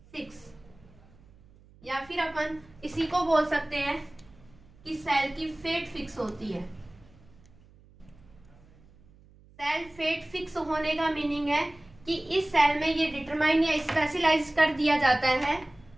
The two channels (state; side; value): noise; right; hum, 26 dB below the sound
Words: फिक्स, या फिर अपन इसी को बोल सकते हैं कि सेल की फेट फिक्स होती है। सेल फेट फिक्स होने का मीनिंग है कि इस सेल में ये डिटरमाइन या स्पेशलाइज कर दिया जाता है